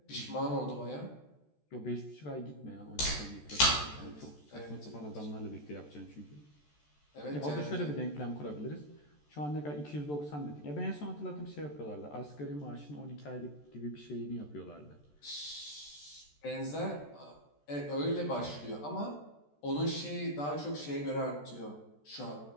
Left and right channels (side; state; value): right; late; 14 ms